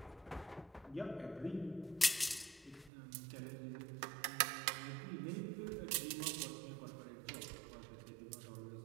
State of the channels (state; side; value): drops out; left; at 2.9 s